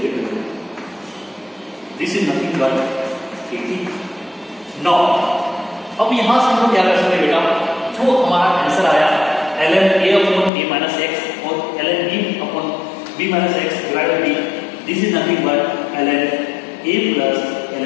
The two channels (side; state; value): right; drops out; at 10.5 s